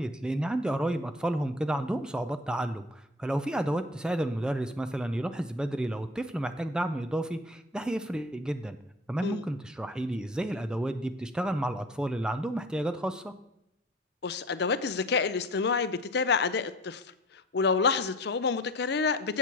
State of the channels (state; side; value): normal; both; correlation 0.44